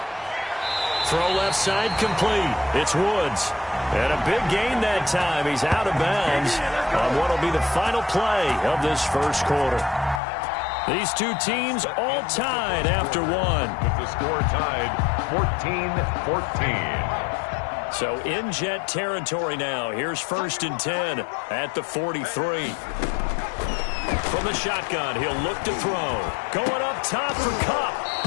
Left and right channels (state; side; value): drops out; right; at 10.2 s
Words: Throw left side complete. It's Woods. And a big gain that time. He's out of bounds on what will be the final play of this first quarter. These two teams all tied after one. With the score tied 14-14. So in Jet territory now. Here's 1st and 10 at the 43. From the shotgun, he'll look to throw. Going up top for Kupp.